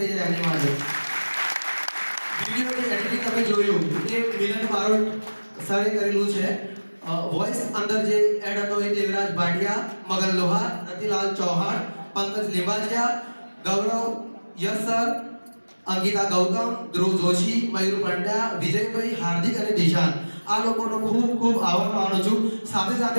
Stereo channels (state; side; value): inverted; both; correlation -1.00